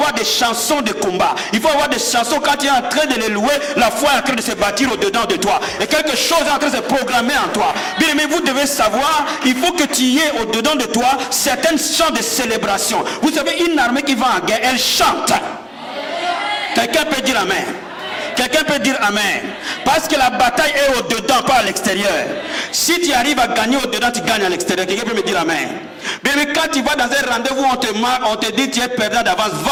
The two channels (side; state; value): both; identical; correlation 1.00